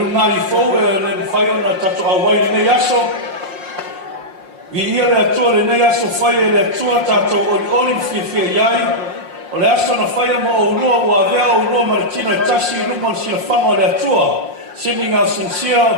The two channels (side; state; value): left; late; 5.6 ms